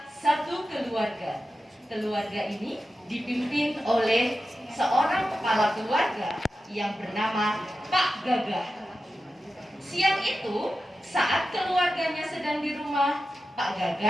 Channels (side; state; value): both; normal; correlation 0.92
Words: satu keluarga. Keluarga ini dipimpin oleh seorang kepala keluarga yang bernama Pak Gagah. Siang itu, saat keluarganya sedang di rumah, Pak